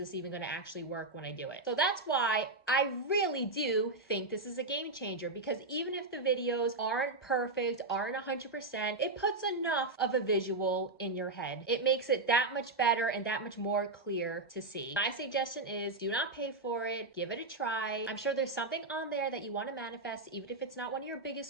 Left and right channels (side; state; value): left; quieter; 3.3 dB